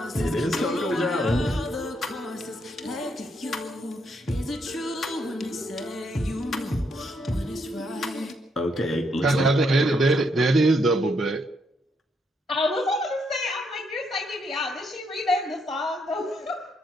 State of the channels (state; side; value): normal; both; correlation 0.76